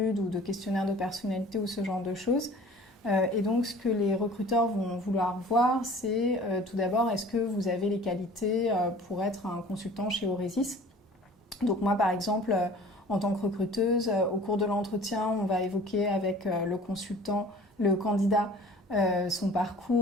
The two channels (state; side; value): normal; both; correlation 0.46